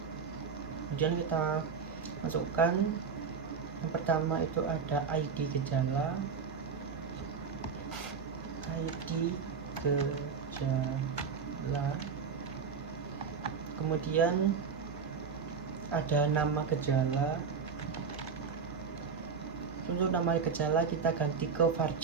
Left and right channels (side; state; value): left; quieter; 5.9 dB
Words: kemudian kita masukkan yang pertama itu ada ID gejala, kemudian ada nama gejala, untuk nama gejala kita ganti ke